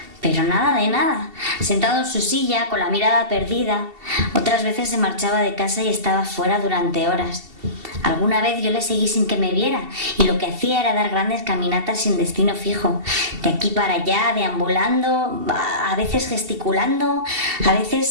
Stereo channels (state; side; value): late; left; 2.7 ms